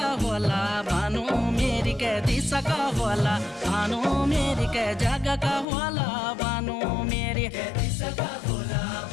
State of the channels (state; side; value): drops out; right; at 5.7 s